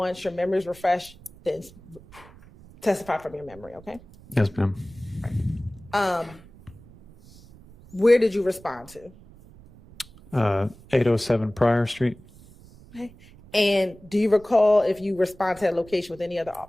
your memory is refreshed, then testify from your memory, okay? Yes, ma'am. Where did you respond to? 807 Pryor Street. Okay. And do you recall if you respond to that location with any other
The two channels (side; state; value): right; noise; rumble, 23 dB below the sound